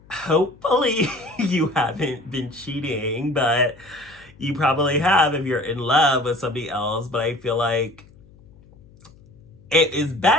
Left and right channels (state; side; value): noise; left; hum, 26 dB below the sound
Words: hopefully you haven't been cheating, but you probably have if you're in love with somebody else. But I feel like it is